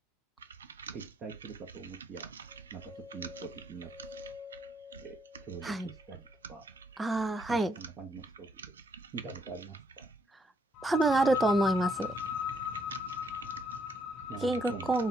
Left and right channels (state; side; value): normal; both; correlation 0.73